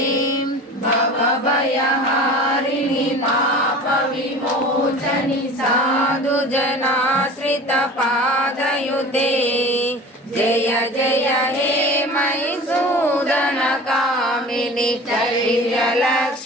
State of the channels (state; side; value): normal; both; correlation 0.38